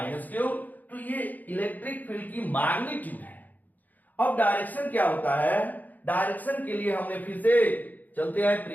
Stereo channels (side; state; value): right; late; 0.082 ms